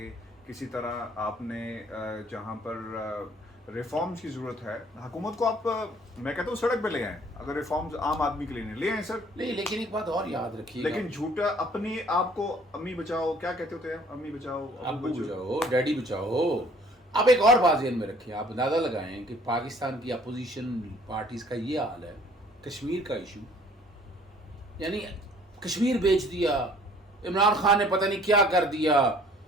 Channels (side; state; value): both; normal; correlation 0.56